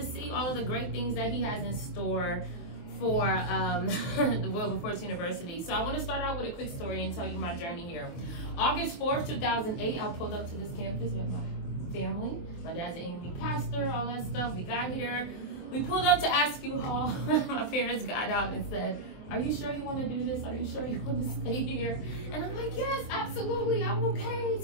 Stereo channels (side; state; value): right; late; 24 ms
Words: see all of the great things that he has in store for the Wilberforce University. So I want to start out with a quick story and tell you my journey here. August 4th, 2008, I pulled up to this campus with my family. My dad's an AME pastor, all that stuff. We got here. We pulled up to Askew Hall. My parents got out and said, "Are you sure you want to do this? Are you sure you want to stay here?" And I'm like, "Yes, absolutely, I'm okay."